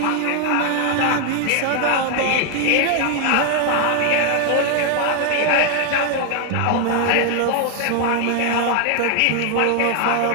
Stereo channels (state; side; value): different; both; correlation 0.00